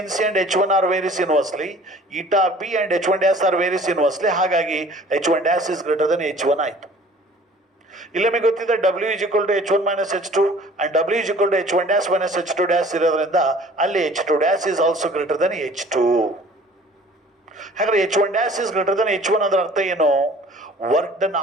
and H1 are various inversely, eta B and H1 dash are various inversely. ಹಾಗಾಗಿ H1 dash is greater Dhan H1 ಆಯಿತು. ಇಲ್ಲಿ ನಮಗೆ ಗೊತ್ತಿದೆ W is equal to H1 minus H2 and W is equal to H1 dash minus H2 dash ಇರೋದ್ರಿಂದ ಅಲ್ಲಿ H2 dash is also greater than H2. ಹಾಗಾದ್ರೆ H1 dash is greater than H1 ಅದರ ಅರ್ಥ ಏನು? ವರ್ಕ್ ಡನ್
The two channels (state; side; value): normal; both; correlation 0.50